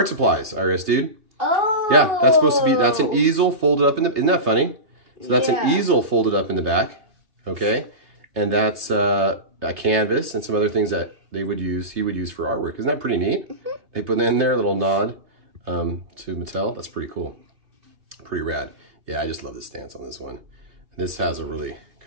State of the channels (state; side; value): late; left; 3.3 ms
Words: supplies, IRS Dude. Oh. Yeah, that's supposed to be, that's an easel folded up in the, isn't that funny? So that's an easel folded up in the back, okay? And that's a canvas and some other things that he would use for artwork. Isn't that pretty neat? Mm-hmm. They put in there a little nod to Mattel. That's pretty cool. Pretty rad. Yeah, I just love the stance on this one. And this has a really